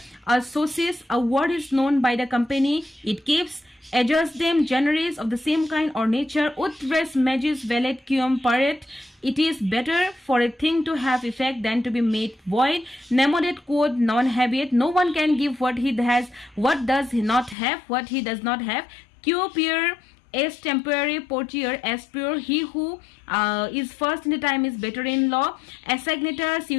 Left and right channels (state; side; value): drops out; right; at 17.6 s